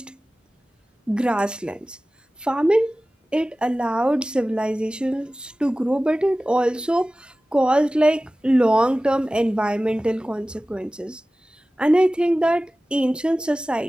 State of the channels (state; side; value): normal; both; correlation 0.97